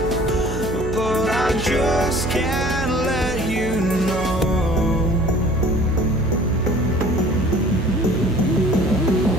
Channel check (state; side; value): noise; right; hum, 6 dB below the sound